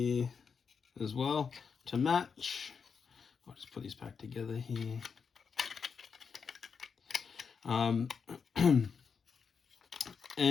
as well to match. I'll just put these back together here.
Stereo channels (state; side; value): quieter; right; 6.0 dB